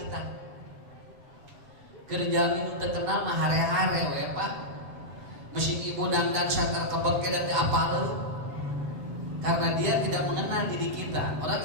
Kerja teu kenal mah hare-hare we Pak. Mesin ibu dandan sakar kebeke dan apal. Karena dia tidak mengenal diri kita. Orang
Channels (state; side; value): late; left; 8.0 ms